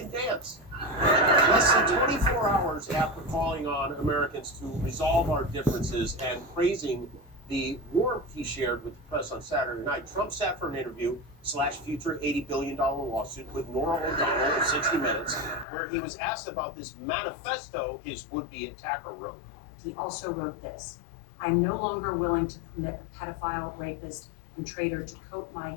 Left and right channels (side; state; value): right; drops out; at 15.7 s